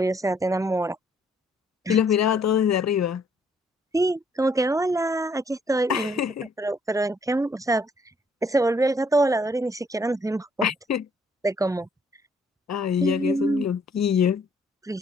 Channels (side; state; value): both; normal; correlation 0.66